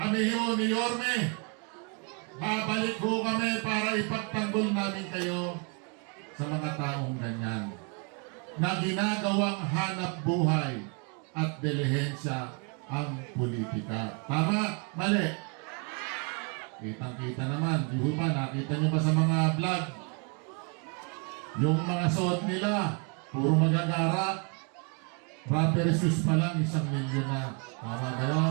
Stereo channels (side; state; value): left; quieter; 35.3 dB